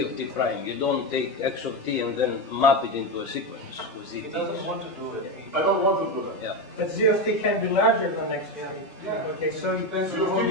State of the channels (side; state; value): both; normal; correlation 0.13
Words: of t prime. You don't take x of t and then map it into a sequence with z. He doesn't want to do it. I don't want to do that. Yeah. But z of t can be larger than x of t. Yeah. Okay, so you Z of t